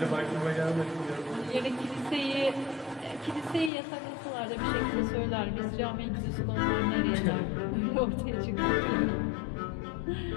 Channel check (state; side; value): drops out; right; at 3.7 s